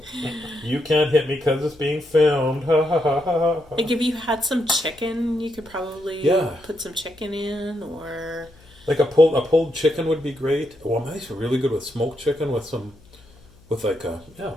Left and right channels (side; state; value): left; noise; hum, 27 dB below the sound